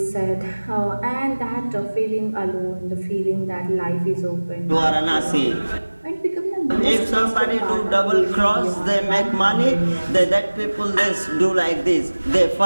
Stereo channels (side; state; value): both; inverted; correlation -1.00